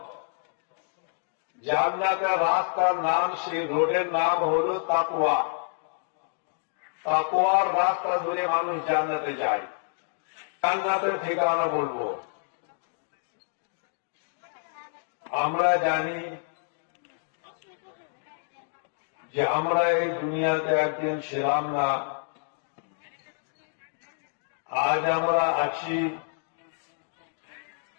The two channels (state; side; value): silent; right; digital silence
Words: জান্নাতের রাস্তার নাম, সেই রোডের নাম হলো তাকওয়া। তাকওয়ার রাস্তা ধরে মানুষ জান্নাতে যায়। জান্নাতের ঠিকানা বলবো। আমরা জানি যে আমরা এই দুনিয়াতে একদিন ছিলাম না, আজ আমরা আছি,